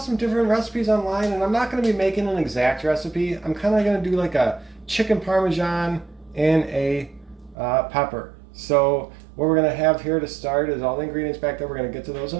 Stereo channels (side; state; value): left; drops out; at 7.6 s